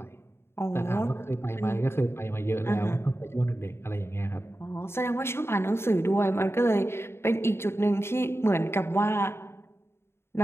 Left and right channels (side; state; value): right; late; 0.12 ms